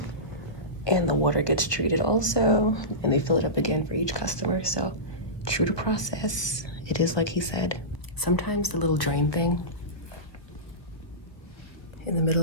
and the water gets treated also, and they fill it up again for each customer. So true to process, it is like he said. Sometimes the little drain thing in the middle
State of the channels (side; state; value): right; late; 1.2 ms